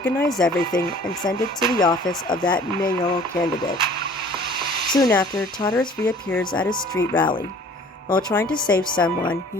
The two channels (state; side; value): normal; both; correlation 0.50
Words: everything and send it to the office of that mayoral candidate. Soon after, Tartarus reappears at a street rally. While trying to save someone,